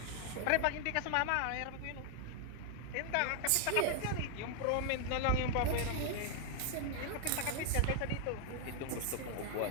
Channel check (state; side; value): different; both; correlation 0.00